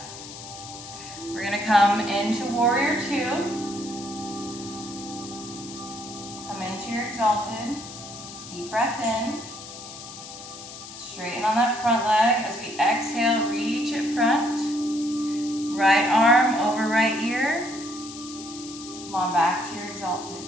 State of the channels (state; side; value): noise; left; hiss, 13 dB below the sound